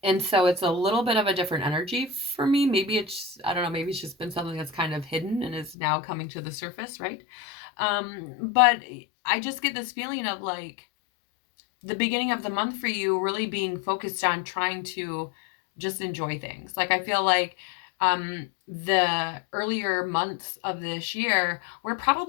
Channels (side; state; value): right; drops out; at 5.8 s